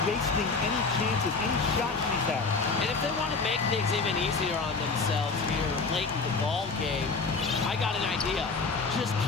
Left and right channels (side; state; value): right; quieter; 4.3 dB